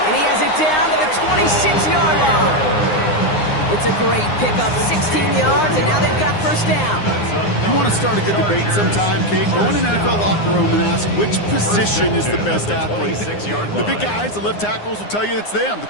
And he has it down to the 26-yard line. It's a great pickup, 16 yards, and now they've got first down. You want to start a good debate sometime, Kate? Go in an NFL locker room and ask which position is the best athlete. The big guys, the left tackles will tell you it's them. The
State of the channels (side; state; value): right; late; 9.7 ms